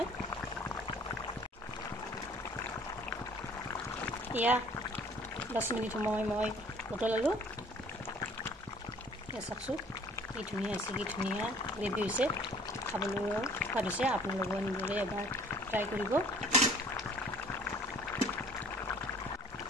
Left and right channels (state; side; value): normal; both; correlation 0.53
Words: এয়া 10 মিনিট সময় মই উতলালোঁ এয়া চাওকচোন কি ধুনীয়া হৈছে কি ধুনীয়া গ্ৰেভি হৈছে খাবলৈ সোৱাদ হৈছে আপোনালোকে এনেদৰে এবাৰ ট্ৰাই কৰিব